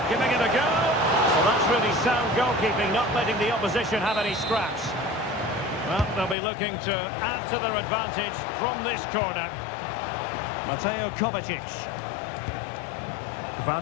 Giving it a go. Well, that's really sound goalkeeping, not letting the opposition have any scraps. Well, they'll be looking to add to their advantage from this corner. Mateo Kovacic.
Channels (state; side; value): drops out; right; at 6.4 s